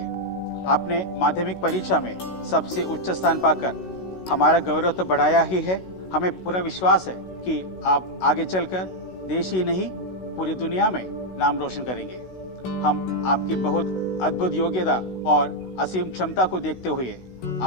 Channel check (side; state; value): right; late; 16 ms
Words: आपने माध्यमिक परीक्षा में सबसे उच्च स्थान पाकर हमारा गौरव तो बढ़ाया ही है। हमें पूरा विश्वास है कि आप आगे चलकर देश ही नहीं पूरी दुनिया में नाम रोशन करेंगे। हम आपकी बहुत अद्भुत योग्यता और असीम क्षमता को देखते हुए